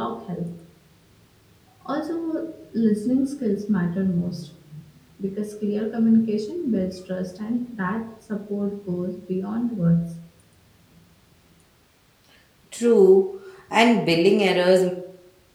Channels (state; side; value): identical; both; correlation 1.00